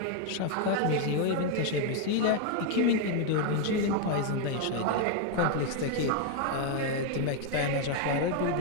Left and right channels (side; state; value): both; different; correlation 0.01